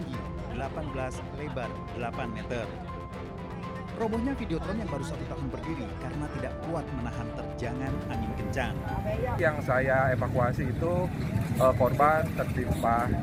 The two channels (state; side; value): identical; both; correlation 1.00